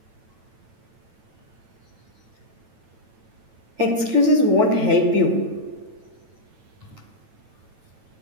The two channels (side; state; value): left; late; 9.0 ms